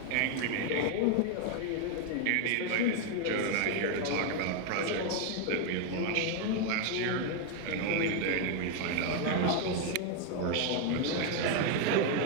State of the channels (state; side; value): different; both; correlation 0.01